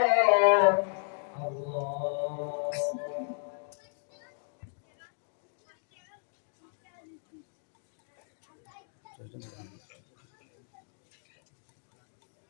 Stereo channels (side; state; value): right; silent; 55 dB below the other